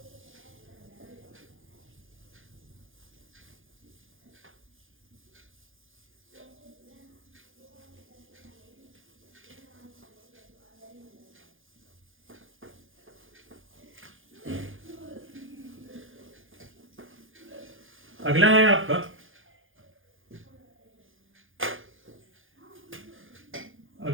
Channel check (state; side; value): late; left; 0.58 ms